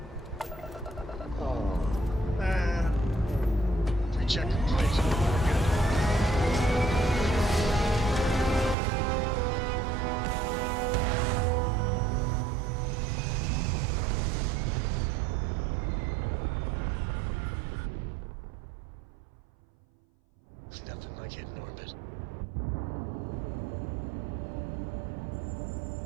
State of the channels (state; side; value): drops out; left; at 8.8 s